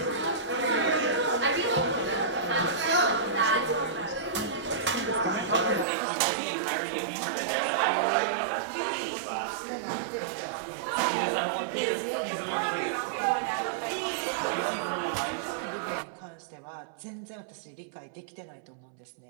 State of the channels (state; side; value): drops out; left; at 5.9 s